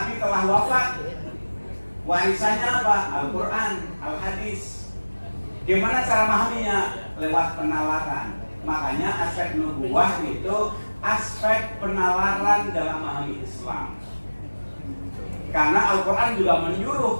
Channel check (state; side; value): inverted; both; correlation -1.00